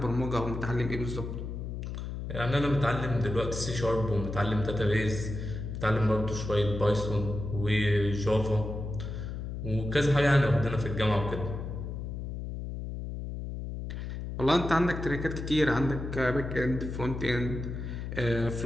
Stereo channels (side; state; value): left; noise; hum, 6 dB below the sound